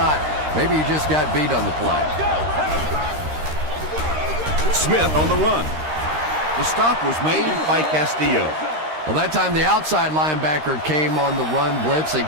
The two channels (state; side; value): late; left; 13 ms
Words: Maybe he just got beat on the play. Smith on the run. The stop was made by Castillo. Well, that time the outside linebacker came on the run blitz. They